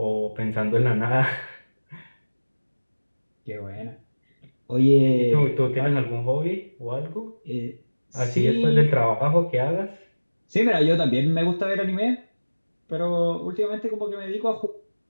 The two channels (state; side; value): inverted; both; correlation -1.00